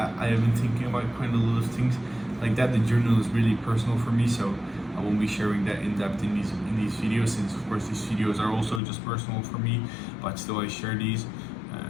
have been thinking about quite a lot of things like that. The journal is really personal for me, so I won't be sharing that in depth in these videos, since of course these videos are also just personal for me, but still I share these,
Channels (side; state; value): right; drops out; at 8.8 s